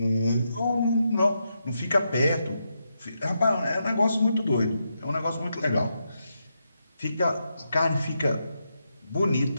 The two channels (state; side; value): inverted; both; correlation -0.84